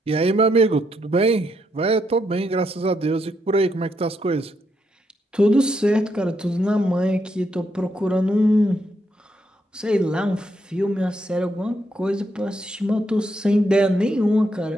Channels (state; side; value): normal; both; correlation 0.78